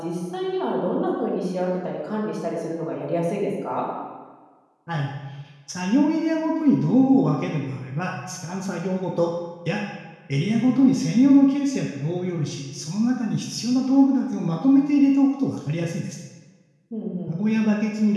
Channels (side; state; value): both; identical; correlation 1.00